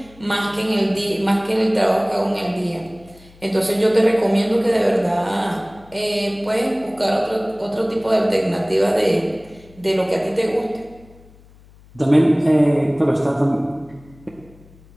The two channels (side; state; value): left; noise; hum, 25 dB below the sound